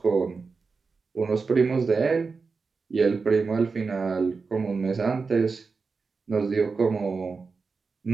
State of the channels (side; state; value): left; quieter; 4.6 dB